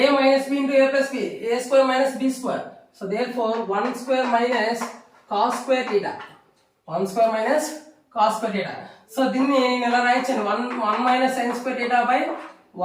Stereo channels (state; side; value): identical; both; correlation 1.00